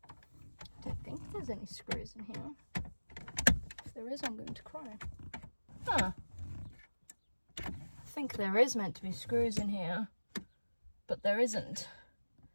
There's any screws in here. If there is, I'm going to cry. Huh. I think there is meant to be screws in here, but there isn't.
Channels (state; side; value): inverted; both; correlation -1.00